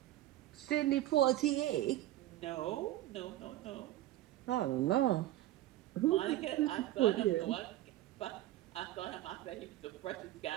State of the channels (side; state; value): left; quieter; 14.8 dB